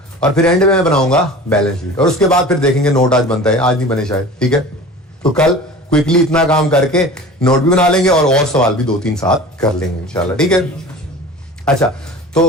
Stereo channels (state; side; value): normal; both; correlation 0.38